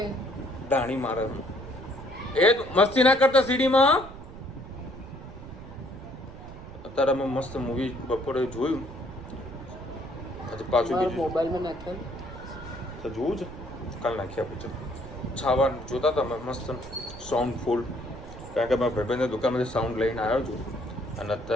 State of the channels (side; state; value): right; noise; rumble, 14 dB below the sound